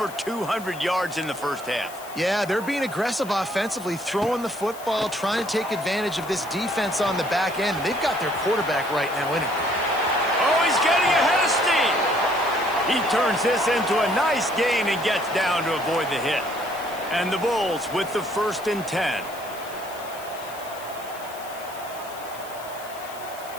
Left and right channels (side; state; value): left; noise; hiss, 17 dB below the sound